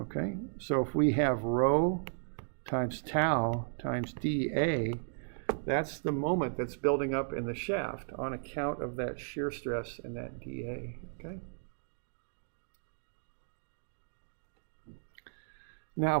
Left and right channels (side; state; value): left; silent; digital silence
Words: so if we have rho times tau times dA, that's the moment that's building up in the shaft on account of that shear stress and that dA. Okay. Now,